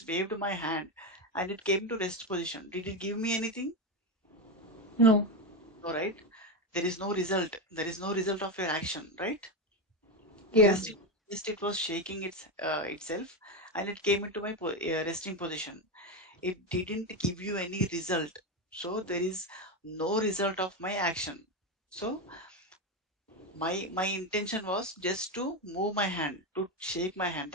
waved my hand, and it came to rest position. Did it give me anything? No. No, right? There is no result. There is no result of your action, right? Yeah. Just it was shaking itself, and it came into my resting position. It didn't give you any result. So there is no result of my action. So my intention was just to move my hand, to shake my hand.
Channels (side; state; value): both; normal; correlation 0.13